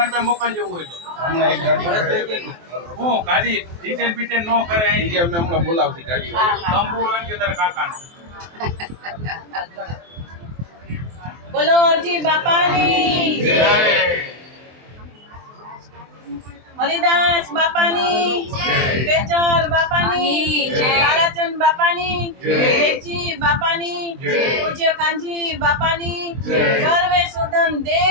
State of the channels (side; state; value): left; late; 23 ms